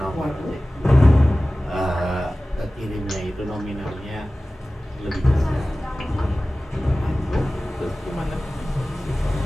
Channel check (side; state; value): both; normal; correlation 0.97